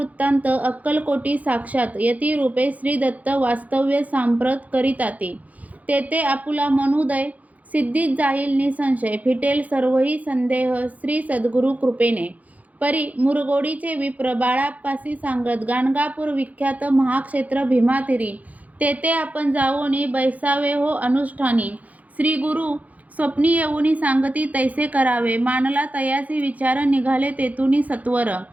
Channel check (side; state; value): left; late; 0.075 ms